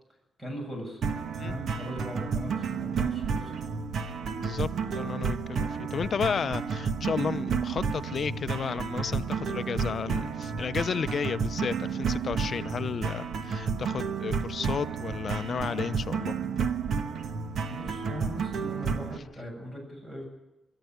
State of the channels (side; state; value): both; normal; correlation 0.68